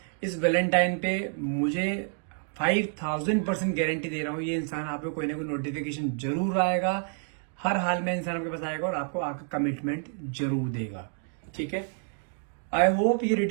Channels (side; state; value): left; silent; 59 dB below the other